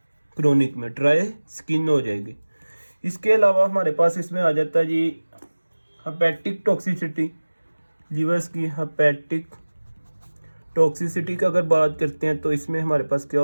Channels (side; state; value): both; inverted; correlation -1.00